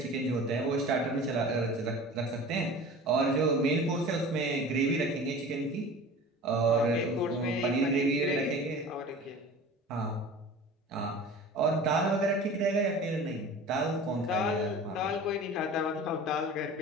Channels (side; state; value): both; normal; correlation 0.39